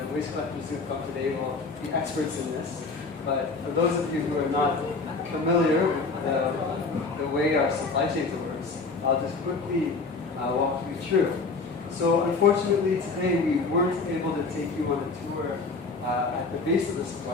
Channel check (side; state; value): right; quieter; 4.0 dB